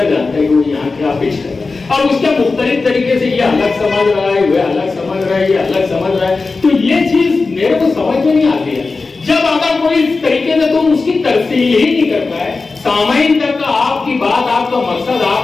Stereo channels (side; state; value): right; quieter; 4.0 dB